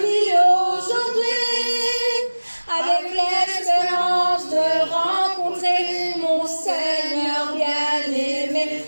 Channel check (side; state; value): both; inverted; correlation -1.00